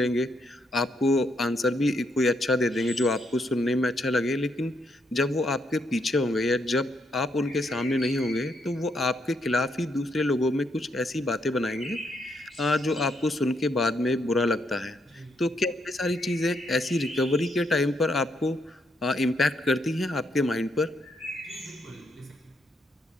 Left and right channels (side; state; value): both; normal; correlation 0.76